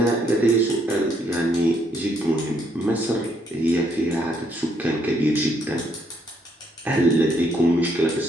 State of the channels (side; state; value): both; normal; correlation 0.71